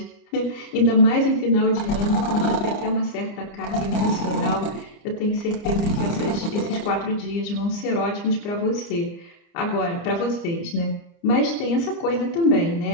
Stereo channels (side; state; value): right; late; 29 ms